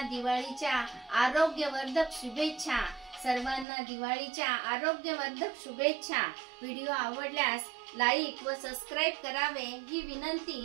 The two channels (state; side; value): drops out; left; at 3.7 s